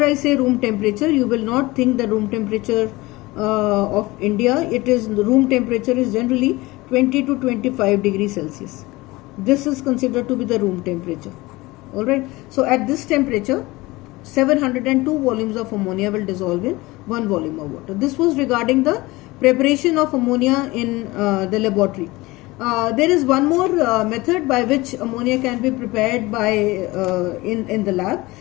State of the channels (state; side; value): quieter; right; 21.0 dB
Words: I say room temperature, you will not think the room temperature of India. It is, the room temperature is generally 20 to 25 degrees Celsius. This is considered to be the room temperature. Alright. So at this temperature, 702 volumes of ammonia will dissolve in 1 volume of water. This was regarding the preparation of ammonia in the laboratory. There is one more method by which ammonia can be prepared by in the lab.